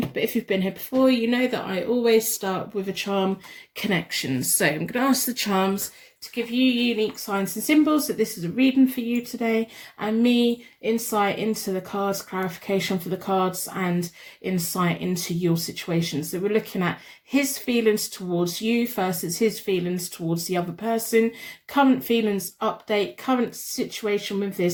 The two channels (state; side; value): identical; both; correlation 1.00